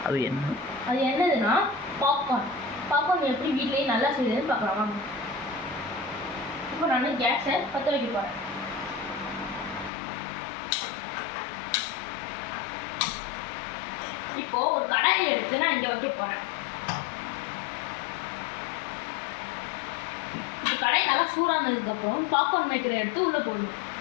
அது என்னதுன்னா பாப்கார்ன் எப்படி வீட்லேயே நல்லா செய்யுதுன்னு பார்க்கலாம் வாங்க. இப்போ நான் கேஸை பற்ற வைக்க போகிறேன். இப்போது ஒரு கடாயை எடுத்து நான் இங்கே வைக்க போகிறேன். இப்போ கடாய் நல்லா சூடானதுக்கப்புறம் பாப்கார்ன் மேக்கரை எடுத்து உள்ளே போடணும்.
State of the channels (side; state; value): right; drops out; at 9.9 s